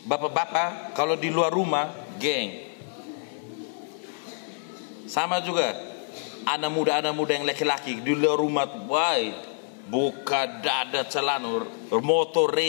Bapak-bapak kalau di luar rumah, geng. Sama juga anak muda yang laki-laki di luar rumah, buka dada celana, motor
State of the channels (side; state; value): right; silent; 60 dB below the other